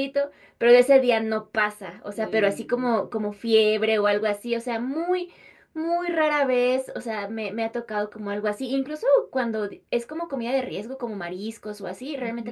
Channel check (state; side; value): identical; both; correlation 1.00